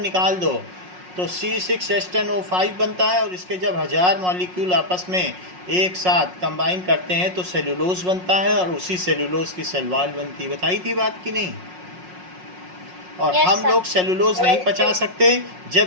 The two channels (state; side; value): late; left; 5.5 ms